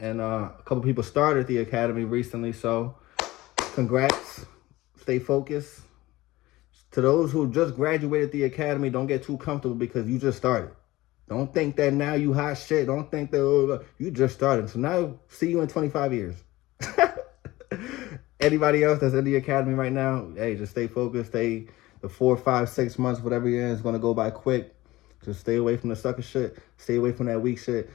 a couple of people started the academy recently. So, congrats. Stay focused. To those who just graduated the academy, don't get too comfortable because you just started. Don't think that now you hot shit. Don't think that, oh, you just started. So now, see you in 25 years. Anybody else that's in the academy right now, hey, just stay focused. Stay the 4, 5, 6 months, whatever it is going to go by quick. Just stay away from the sucker shit. Stay away from that weak shit.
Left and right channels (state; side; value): quieter; right; 18.4 dB